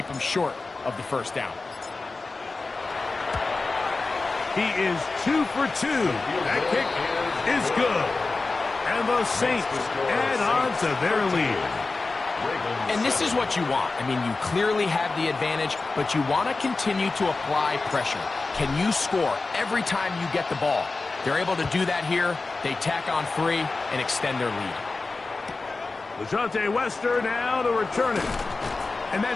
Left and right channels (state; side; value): quieter; right; 3.7 dB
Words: him short of the first down. He is 2 for 2. That kick is good. And the Saints add on to their lead. And this is what you want. I mean, you clearly have the advantage, but you want to continue to apply pressure. Can you score every time you get the ball? They're able to do that here. They tack on 3 and extend their lead. LeJohntay Wester now to return it. And